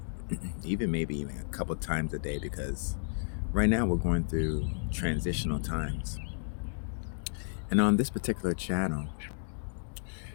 Maybe even a couple times a day, because right now we're going through transitional times. And on this particular channel,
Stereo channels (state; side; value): silent; right; digital silence